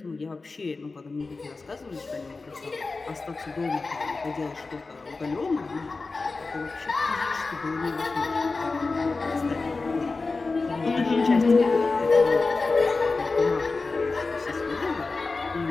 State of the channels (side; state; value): right; quieter; 3.8 dB